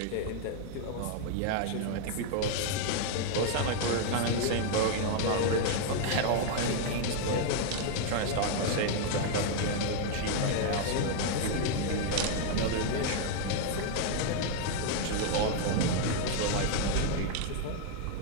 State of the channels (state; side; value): different; both; correlation 0.00